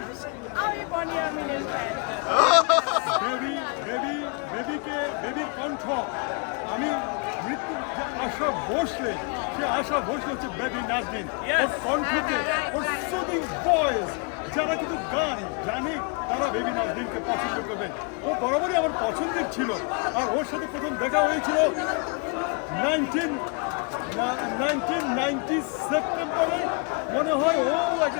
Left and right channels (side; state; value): right; quieter; 36.2 dB